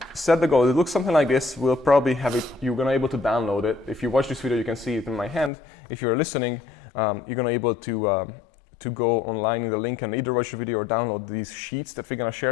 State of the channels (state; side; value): drops out; right; at 5.5 s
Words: set the goal. It looks something like this. We'll probably have it, you're gonna be able to download it. If you watch this video, you can see it in my hand. If you're listening, you're gonna be able to go online in the link and either watch the video or download these sheets that we're gonna